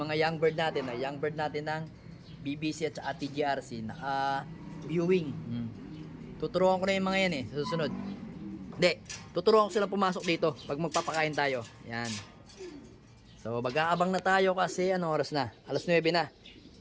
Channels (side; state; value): both; identical; correlation 1.00